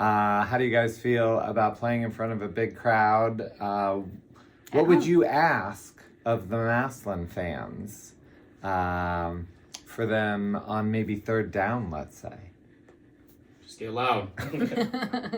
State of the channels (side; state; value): both; identical; correlation 1.00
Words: do you guys feel about playing in front of a big crowd? What would you ask of the Massillon fans for them on maybe third down, let's say? Just get loud.